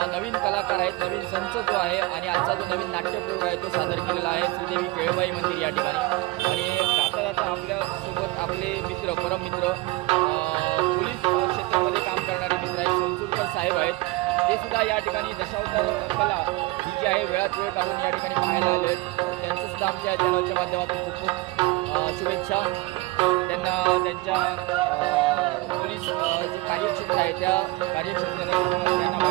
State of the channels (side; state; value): left; quieter; 21.3 dB